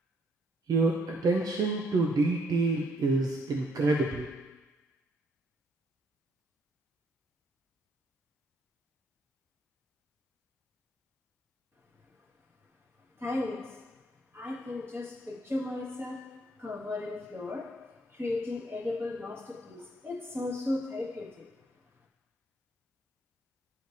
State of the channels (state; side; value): normal; both; correlation 0.69